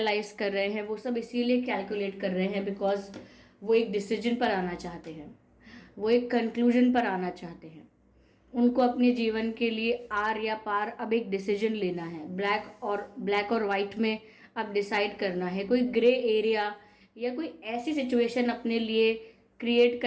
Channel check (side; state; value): both; identical; correlation 1.00